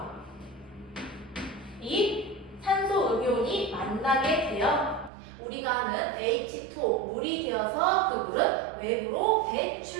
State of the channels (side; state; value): left; drops out; at 5.1 s